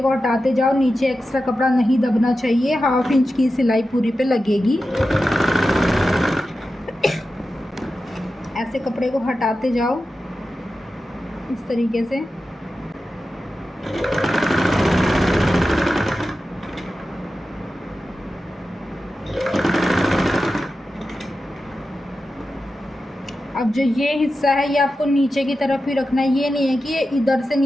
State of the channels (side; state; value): both; normal; correlation 0.92